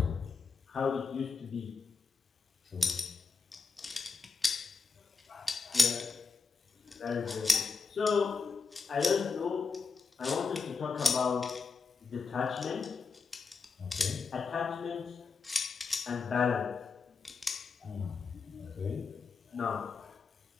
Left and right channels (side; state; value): right; quieter; 4.9 dB